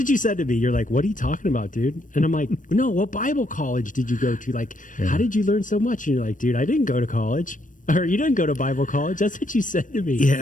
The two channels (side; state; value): right; late; 0.38 ms